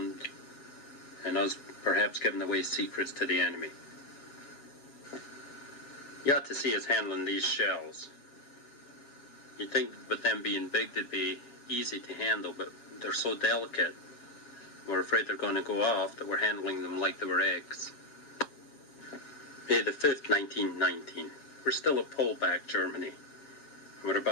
and us perhaps giving away secrets to the enemy. You ought to see us handling these shells. You'd think with them being big they'd be easy to handle, but they're so delicate. We're afraid they're going to go off that we're handling them like they were eggs. May the 5th, 1919. We're still at Polbach, Germany. And we're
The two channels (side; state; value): right; late; 7.3 ms